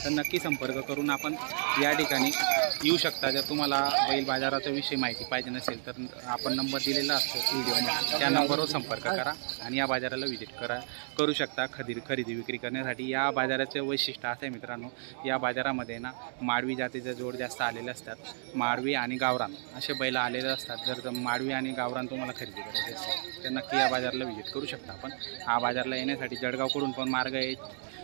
तर नक्की संपर्क करून आपण या ठिकाणी येऊ शकता। जर तुम्हाला बैल बाजाराचा विषयी माहिती पाहिजे नसेल तर आपण नंबर दिलेला असतो व्हिडिओमध्ये, त्या नंबरवर संपर्क करा आणि या बाजाराला व्हिजिट करू शकता खरेदी विक्री करण्यासाठी। या बाजाराचे वैशिष्ट्य असं आहे मित्रांनो, या बाजारामध्ये ना माडवी जातीचे जोड जास्त आलेले असतात। माडवी आणि गावरान असे बैल आलेले असतात। जर माडवी आणि गावरान तुम्हाला खरेदी करायचे असेल तर नक्की या बाजाराला व्हिजिट करू शकता आपण। हा बाजारला येण्यासाठी जळगावकडून पण मार्ग आहे,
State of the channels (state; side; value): silent; left; digital silence